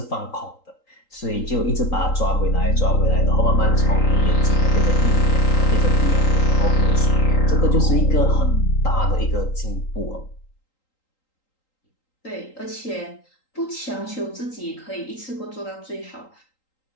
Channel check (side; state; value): right; late; 3.8 ms